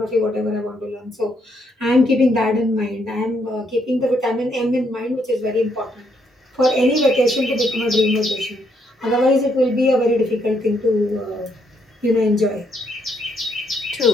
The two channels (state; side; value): normal; both; correlation 0.74